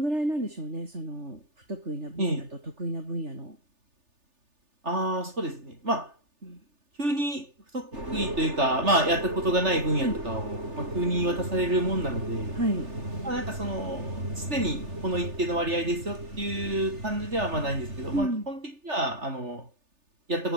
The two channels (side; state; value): left; late; 3.4 ms